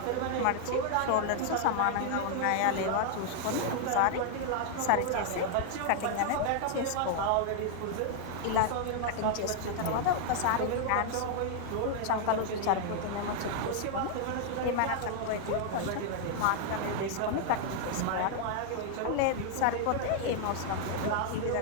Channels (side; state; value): both; different; correlation 0.00